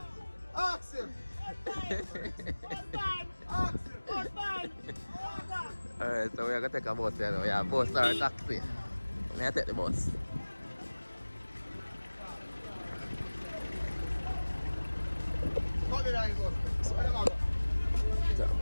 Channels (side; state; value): both; inverted; correlation -1.00